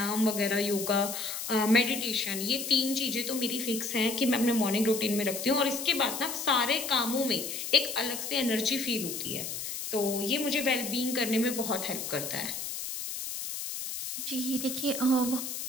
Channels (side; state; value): left; noise; hiss, 5 dB below the sound